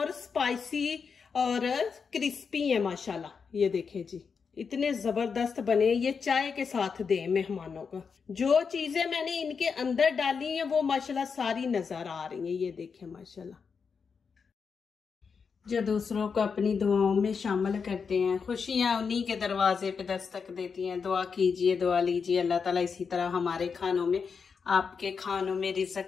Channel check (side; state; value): right; quieter; 5.8 dB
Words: स्पाइसी और क्रिस्पी है माशाल्लाह। ये देखें जी इतने जबरदस्त बने। ये चाय के साथ दें मेहमानों को। जो चीजें मैंने इनके अंदर डाली हैं वो माशाल्लाह सारी नजर आ रही हैं। ये देखें माशाल्लाह। जो दूसरों को अपनी दुआओं में शामिल करते हैं, खुशियां उन्हीं के दरवाजे पे दस्तक देती हैं। दुआ कीजिए, दुआ लीजिए, अल्लाह ताला इसी तरह हमारे खानों में, आपके खानों में,